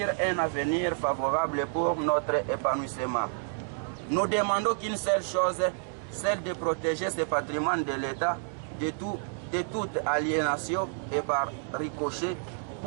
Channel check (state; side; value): silent; left; 58 dB below the other